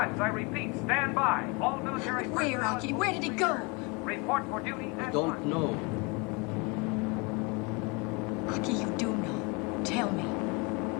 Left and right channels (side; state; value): right; quieter; 29.3 dB